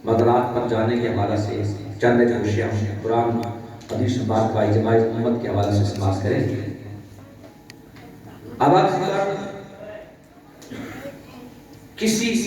مدرات پر جانے کے حوالہ سے چند اشیاء قرآن حدیث بات کا اجماع امت کے حوالہ سے سماعت کریں اب اگر کسی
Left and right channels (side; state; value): both; identical; correlation 1.00